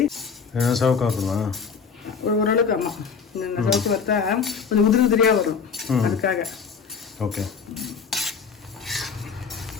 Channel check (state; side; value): quieter; right; 6.0 dB